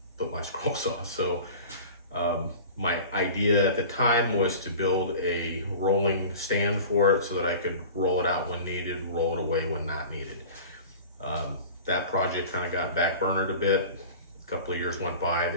put my scroll saw. So my idea at the time was to build a rolling stand for it so that I could roll it out when needed, roll it away when not needed. That project kind of got backburnered a bit. A couple of years went by, the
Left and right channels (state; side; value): inverted; both; correlation -0.38